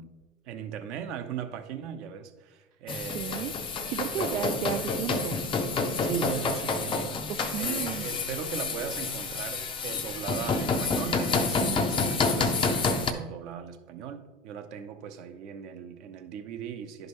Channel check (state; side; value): normal; both; correlation 0.32